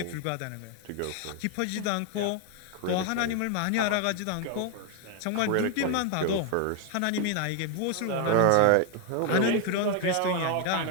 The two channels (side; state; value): both; different; correlation 0.01